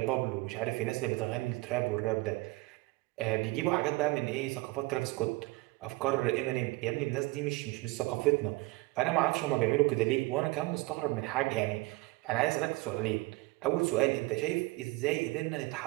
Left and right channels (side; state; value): left; quieter; 22.5 dB